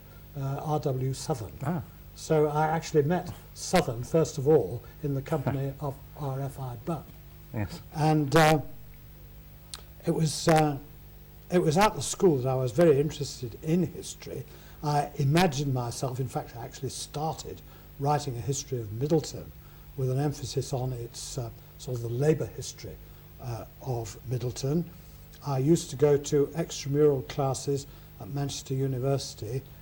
R.W. Southern. Ah. So I actually met Southern, first of all, in the company of R.F.I. Bunn. Yes. And it was at the school that I was very interested in history. I imagined myself, in fact, I actually started writing a history of Middleton with an emphasis on its sort of the labour history of Middleton. I used to go to extramural classes at Manchester University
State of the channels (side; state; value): both; identical; correlation 1.00